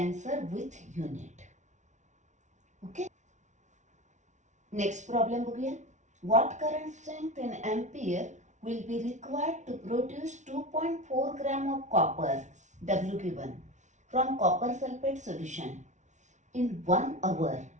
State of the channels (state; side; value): late; left; 0.35 ms